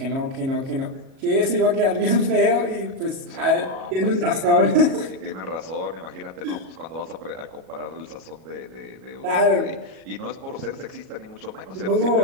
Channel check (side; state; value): left; late; 37 ms